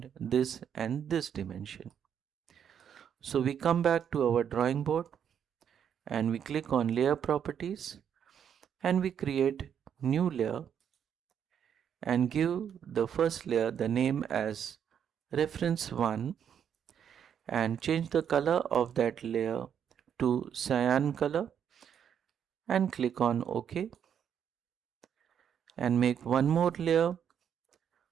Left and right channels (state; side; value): quieter; left; 8.5 dB